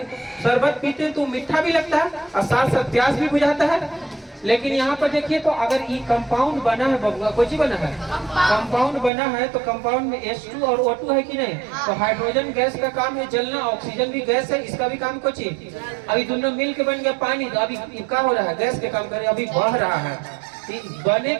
शरबत पीते हैं तो मीठा भी लगता है और साथ साथ प्यास भी बुझाता है। लेकिन यहाँ पर देखिए तो अगर ये कंपाउंड बना है बबुआ, कुछ बना है कंपाउंड बना है, तो कंपाउंड में H2 और O2 है कि नहीं। तो हाइड्रोजन गैस का काम है जलना, ऑक्सीजन भी गैस है, इसका भी काम कुछ है। अभी दोनों मिल के बन गया पानी, तो अभी क्या हो रहा है, गैस के काम करे, अभी बह रहा है। बने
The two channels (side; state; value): left; drops out; at 9.1 s